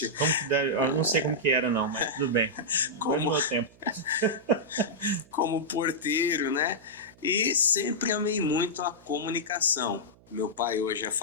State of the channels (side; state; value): right; noise; hum, 27 dB below the sound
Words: Eu não sei como que era, não, mas tudo bem. Como... meu tempo. Como porteiro, né? E sempre amei muito a comunicação. Meu pai hoje é